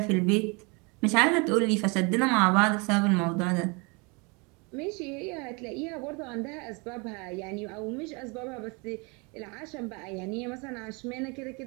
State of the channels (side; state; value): left; quieter; 30.1 dB